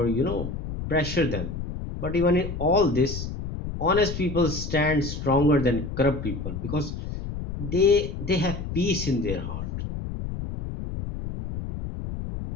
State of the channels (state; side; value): noise; left; rumble, 6 dB below the sound